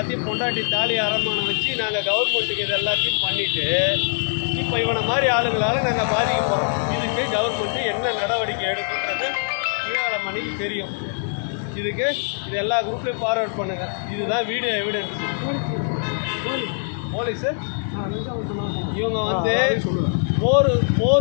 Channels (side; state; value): right; silent; digital silence